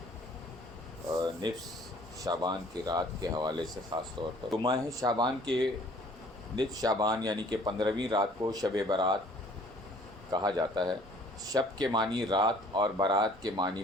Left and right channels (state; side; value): normal; both; correlation 0.55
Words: نصف شعبان کی رات کے حوالے سے خاص طور پر۔ تو ماہ شعبان کے نصف شعبان یعنی کہ 15ویں رات کو شب برات کہا جاتا ہے۔ شب کے معنی رات اور برات کے معنی